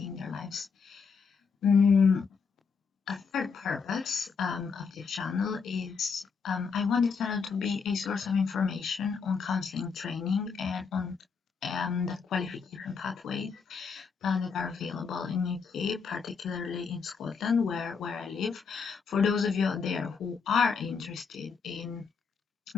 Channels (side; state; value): right; quieter; 5.6 dB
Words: in their lives. A third purpose of this channel is I want the channel to be a source of information on counseling training and on the qualification pathways that are available in UK, particularly in Scotland, where I live. For those of you out there who are interested in